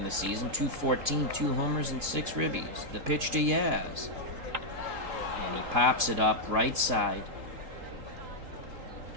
the season. 214, 2 homers, and 6 ribbies. The pitch to Yaz. And he pops it up right side.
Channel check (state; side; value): late; left; 3.8 ms